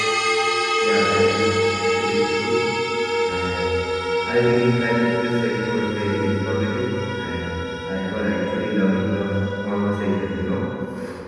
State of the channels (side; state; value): both; identical; correlation 1.00